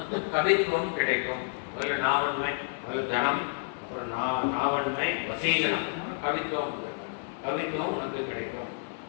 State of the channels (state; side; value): silent; right; 58 dB below the other